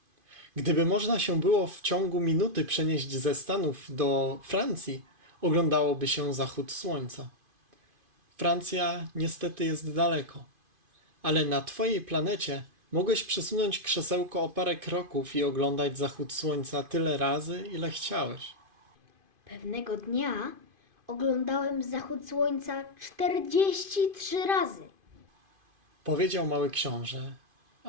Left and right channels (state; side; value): late; left; 2.5 ms